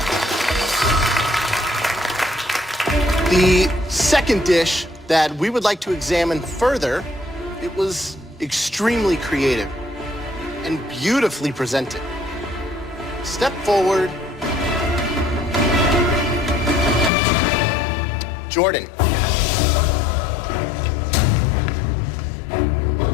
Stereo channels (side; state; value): right; drops out; at 17.1 s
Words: The second dish that we would like to examine further, it was extremely creative and beautifully presented. Step forward. Jordan.